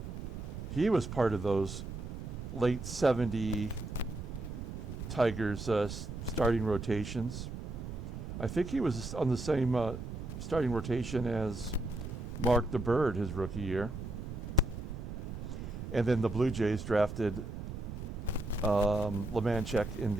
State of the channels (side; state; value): right; noise; rumble, 7 dB below the sound